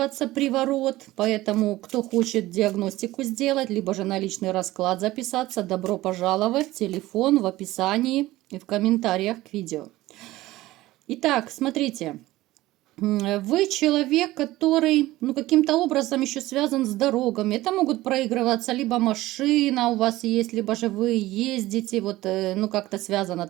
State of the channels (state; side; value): quieter; left; 17.2 dB